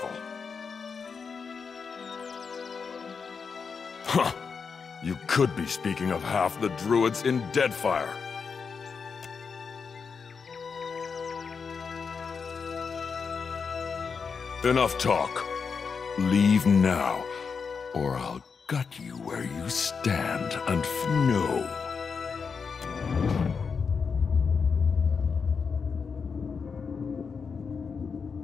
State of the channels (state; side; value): quieter; right; 5.6 dB